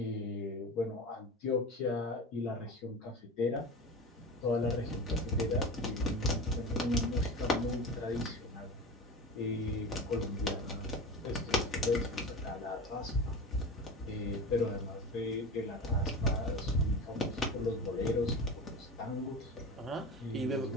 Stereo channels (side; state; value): both; normal; correlation 0.29